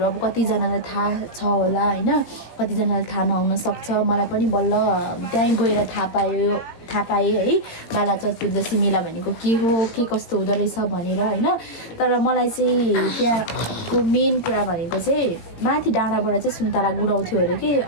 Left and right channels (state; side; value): late; right; 17 ms